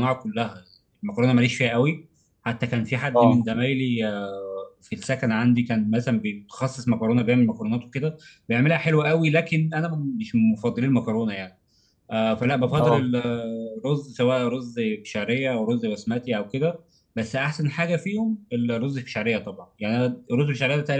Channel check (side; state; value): both; identical; correlation 1.00